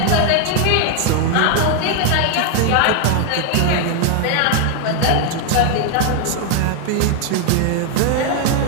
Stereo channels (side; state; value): both; different; correlation 0.00